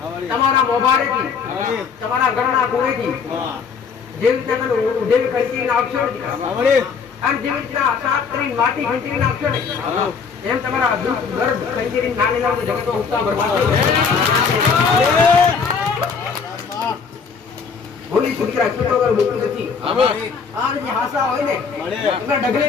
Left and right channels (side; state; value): right; quieter; 5.7 dB